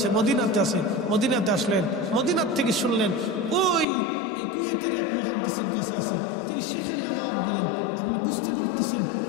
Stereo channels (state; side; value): drops out; right; at 3.9 s